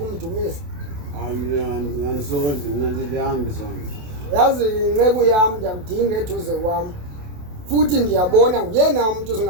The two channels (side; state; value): left; late; 28 ms